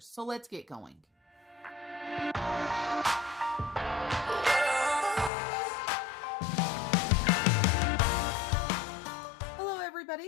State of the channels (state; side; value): drops out; right; at 5.3 s